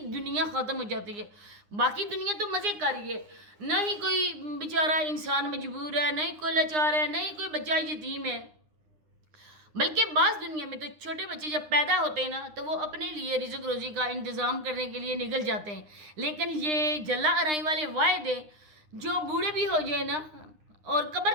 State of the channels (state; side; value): late; left; 9.8 ms